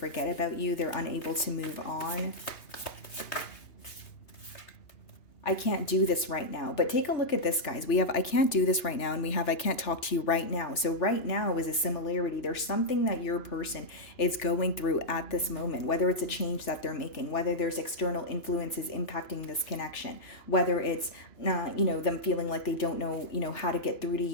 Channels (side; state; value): right; late; 2.9 ms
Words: about you. They're unable to move on. I can't do this right now. But take a look at this, guys. We have I can't do this right now, and we have I can't talk to you right now. So right now is a similarity. There's something that your person is going through at this moment, whether it's a change that they're making, whether there's external influences impacting this connection, whether it's them feeling like they don't know, how to get through to